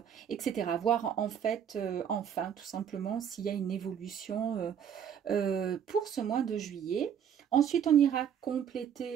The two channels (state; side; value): quieter; left; 8.5 dB